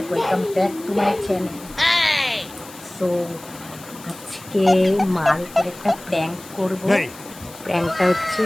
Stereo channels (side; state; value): left; noise; hiss, 19 dB below the sound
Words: Welcome back to my channel. So আজকে মার উপরে একটা প্র্যাঙ্ক করব। প্র্যাঙ্কটা হচ্ছে